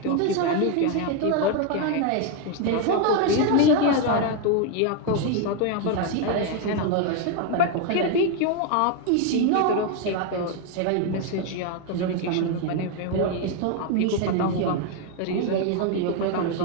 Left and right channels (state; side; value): different; both; correlation 0.01